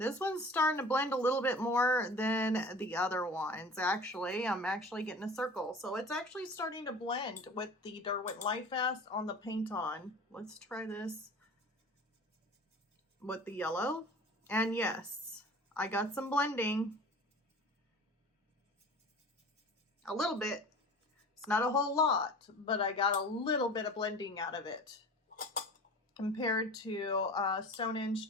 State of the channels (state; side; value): normal; both; correlation 0.40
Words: one's starting to blend a little bit more than the other ones. Actually, I'm actually getting a circle. So it's actually starting to blend with the Derwent Lightfast on the PaintOn. Let's try this with the yellow. And yes, I got some blending. A little bit. It's not a whole lot, but I got a little bit of blending out of it. Compared to Stonehenge